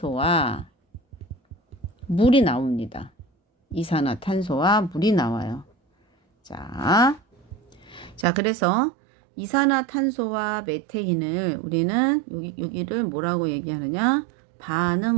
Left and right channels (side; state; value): left; drops out; at 8.2 s